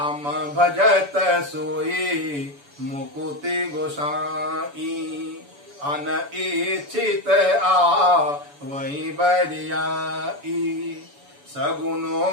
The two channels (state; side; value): late; left; 7.0 ms